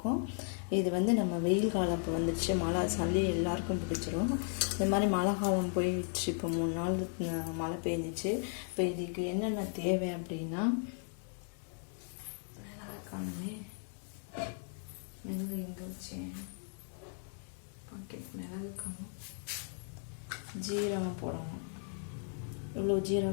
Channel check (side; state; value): right; silent; 54 dB below the other